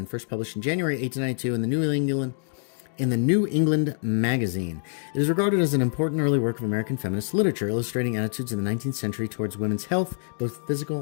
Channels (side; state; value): right; silent; digital silence